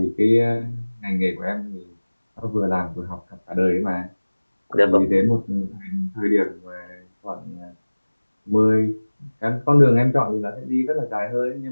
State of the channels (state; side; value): inverted; both; correlation -1.00